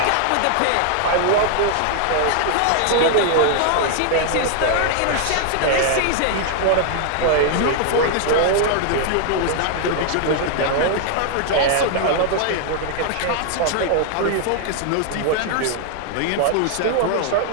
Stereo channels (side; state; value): both; different; correlation 0.00